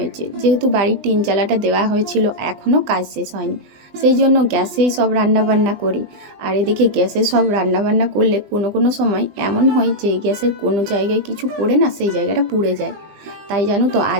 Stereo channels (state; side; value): late; left; 20 ms